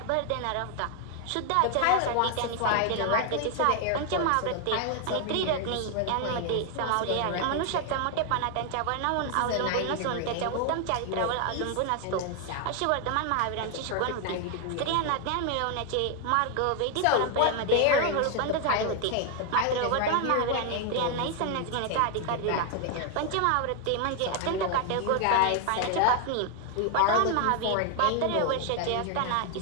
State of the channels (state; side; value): different; both; correlation 0.00